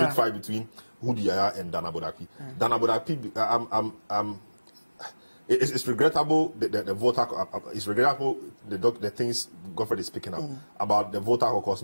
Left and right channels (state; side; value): inverted; both; correlation -1.00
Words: fight between Hudu Yaya and Dana Bodapi. Dana Bodapi, it's regrettable the voter. It's regrettable the things Godfrey is picking up about the voter caucus